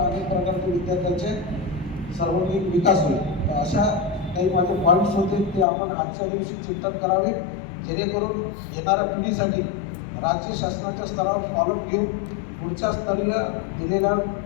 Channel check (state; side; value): drops out; right; at 5.7 s